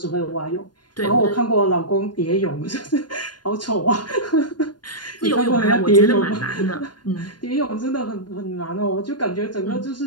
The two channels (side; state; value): right; late; 0.70 ms